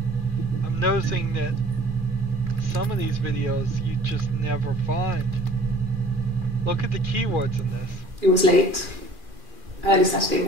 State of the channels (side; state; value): left; late; 2.4 ms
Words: I'm noticing that some of these videos you just never find. Look at the keywords in this. It was late. Early Saturday